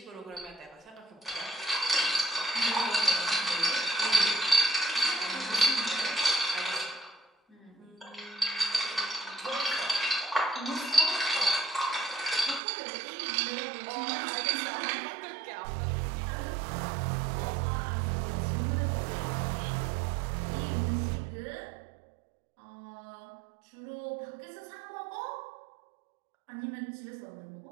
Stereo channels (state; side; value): drops out; left; at 12.6 s